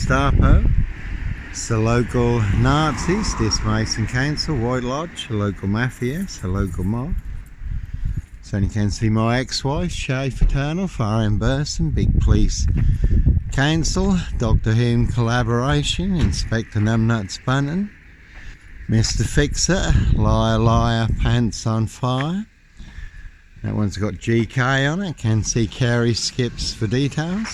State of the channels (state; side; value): identical; both; correlation 1.00